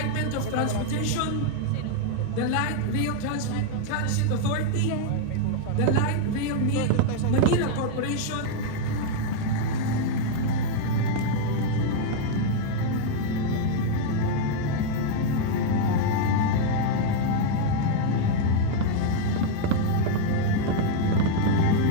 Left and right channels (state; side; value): different; both; correlation 0.00